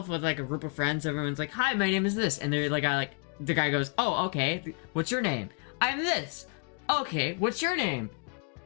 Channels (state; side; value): quieter; right; 38.1 dB